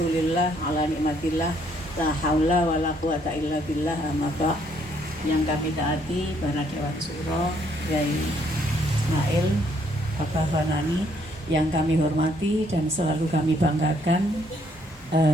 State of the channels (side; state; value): both; normal; correlation 0.68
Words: ala nikmatillah, la haula wa la quwata illa billah, amma ba'. Yang kami taati para Dewan Suro, Yai Ismail, Bapak Fanani, yang kami hormati dan selalu kami banggakan,